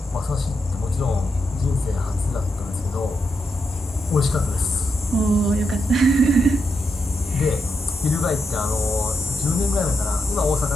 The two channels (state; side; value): normal; both; correlation 0.84